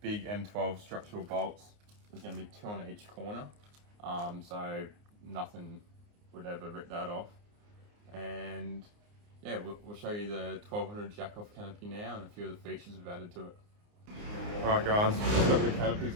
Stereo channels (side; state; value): left; late; 29 ms